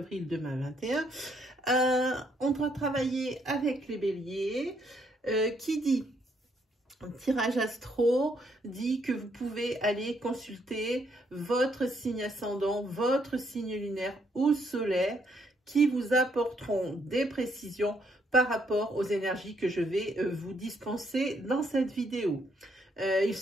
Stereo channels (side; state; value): both; normal; correlation 0.72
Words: 2021. On doit travailler avec les béliers, qui dit tirage astro, dit que vous pouvez aller consulter votre signe ascendant, votre signe lunaire ou solaire, qui vous apporteront des précisions par rapport aux énergies que je vais vous dispenser dans cette vidéo. Il